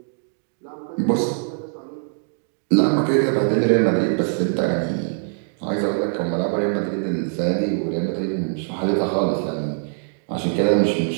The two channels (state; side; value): silent; left; digital silence